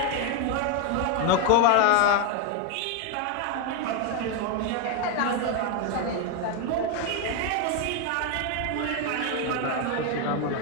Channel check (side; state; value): both; different; correlation 0.01